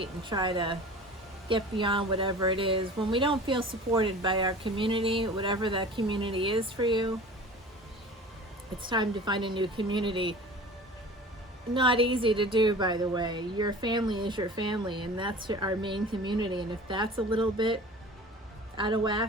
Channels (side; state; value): both; normal; correlation 0.40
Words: and try to get beyond whatever it is. When we don't feel supported by our community, whatever that community is for you, it's time to find a new community. Not easy to do, by the way. Your family is your family, and that's our main community. And if that's a little bit out of